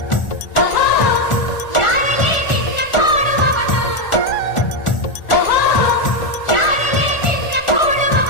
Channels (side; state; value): right; late; 1.4 ms